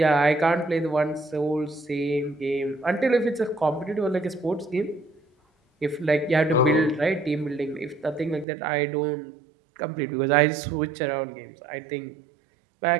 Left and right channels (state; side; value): drops out; left; at 8.5 s